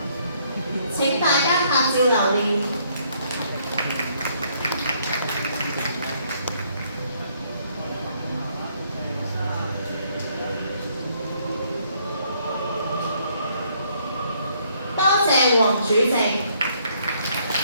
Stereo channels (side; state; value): both; inverted; correlation -0.68